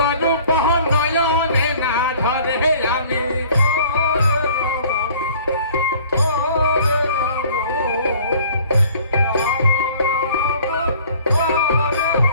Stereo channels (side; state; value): both; inverted; correlation -0.51